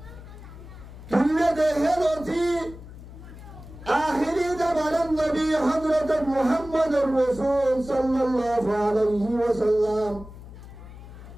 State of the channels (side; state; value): left; noise; hum, 16 dB below the sound